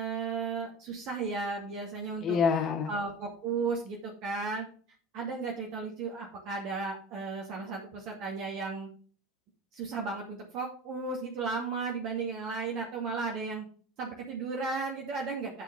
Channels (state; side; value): normal; both; correlation 0.32